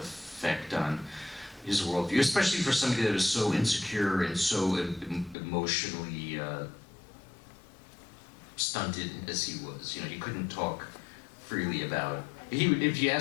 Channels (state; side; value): drops out; right; at 5.4 s